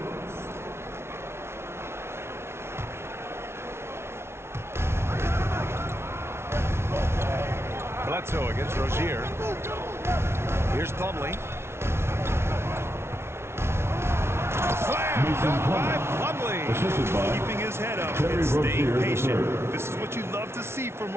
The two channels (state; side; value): late; left; 0.12 ms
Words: Bledsoe against Rozier. Here's Plumlee. Slam dunk by Plumlee. Assisted by Keeping his head up Terry and staying Rozier patient. III. This is what you love to see from